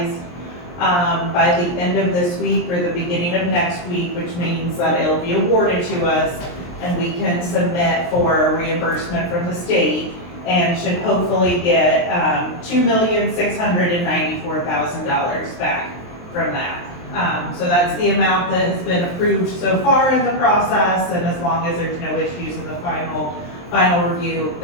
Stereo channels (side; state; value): right; late; 23 ms